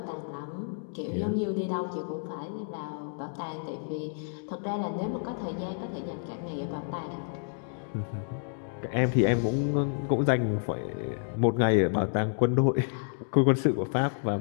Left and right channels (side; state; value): right; silent; digital silence